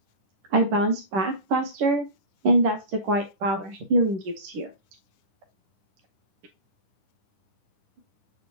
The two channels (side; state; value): left; late; 10 ms